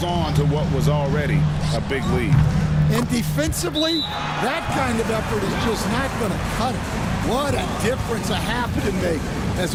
on to what was already a big lead. And defensively, that kind of effort is just not going to cut it. What a difference a half can make.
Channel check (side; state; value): both; identical; correlation 1.00